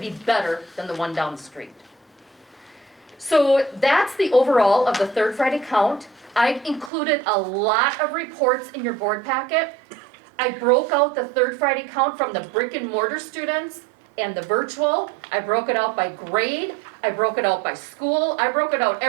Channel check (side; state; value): left; drops out; at 6.9 s